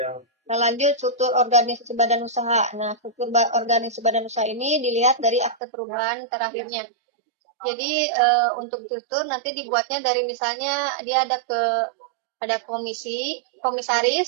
Nah, lanjut struktur organisasi badan usaha. Nah, struktur organisasi badan usaha ini dilihat dari akte perubahan terakhirnya. Jadi untuk struktur nanti dibuatnya dari misalnya dia ada komisaris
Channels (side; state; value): left; drops out; at 5.6 s